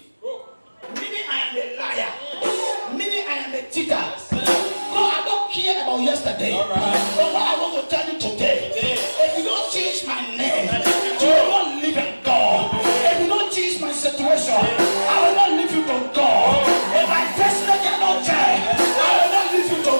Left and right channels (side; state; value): both; inverted; correlation -1.00